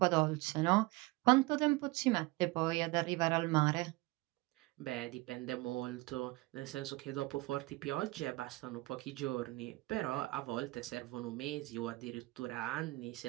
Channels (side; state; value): left; quieter; 22.0 dB